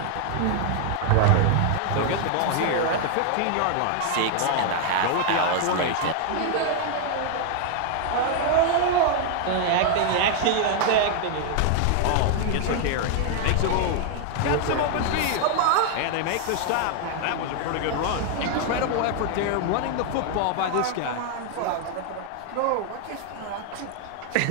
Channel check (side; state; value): both; different; correlation 0.00